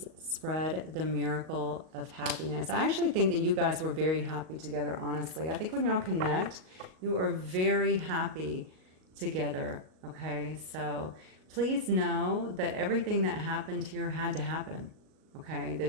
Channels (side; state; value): left; late; 38 ms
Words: Spread the miracle of happiness. I actually think that you guys were very happy together, honestly. I think when y'all connect, you are very happy together, okay? So please know that everything that happened here had to happen, okay?